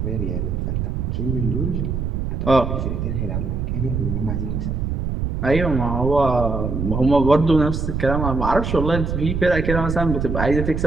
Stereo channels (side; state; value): right; noise; rumble, 2 dB below the sound